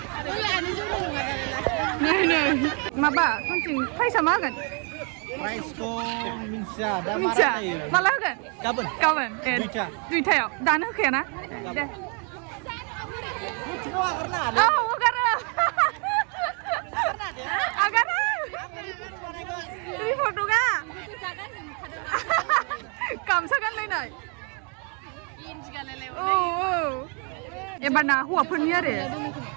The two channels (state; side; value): quieter; left; 36.9 dB